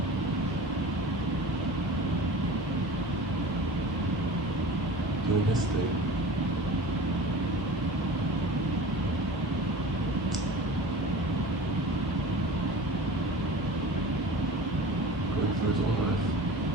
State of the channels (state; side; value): normal; both; correlation 0.37